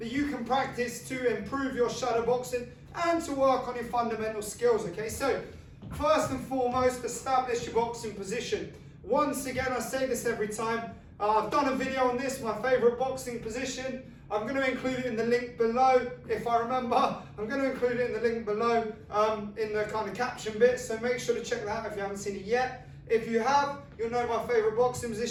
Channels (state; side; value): identical; both; correlation 1.00